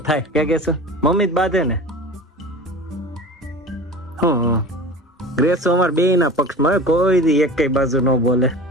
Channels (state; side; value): normal; both; correlation 0.35